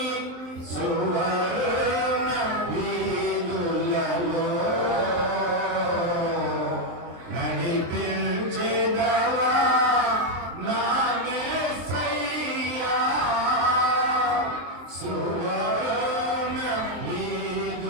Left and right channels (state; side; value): late; left; 23 ms